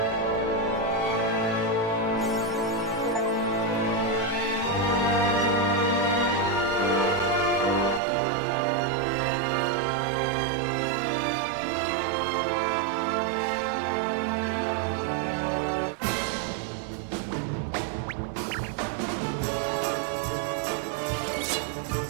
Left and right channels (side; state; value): left; drops out; at 8.0 s